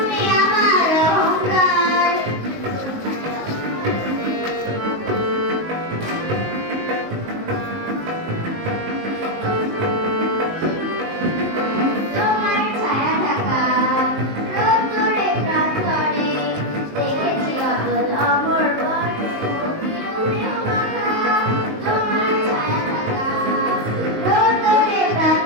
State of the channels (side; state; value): left; late; 19 ms